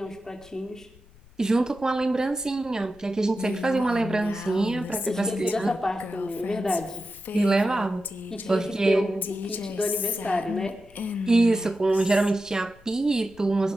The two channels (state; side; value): noise; left; rumble, 26 dB below the sound